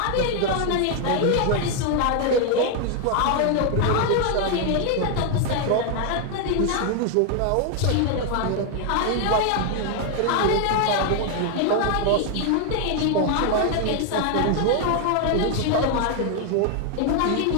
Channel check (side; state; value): both; different; correlation 0.00